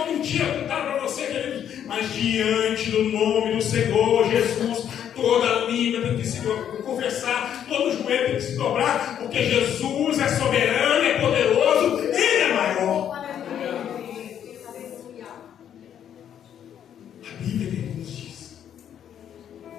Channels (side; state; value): right; quieter; 9.5 dB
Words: mentira contaram para você, queridos, mas diante do nome do Senhor Jesus, toda língua tem que se confessar, todo joelho tem que se dobrar, porque Jesus é soberano, é poderoso, Ele é maior. A Bíblia nos diz,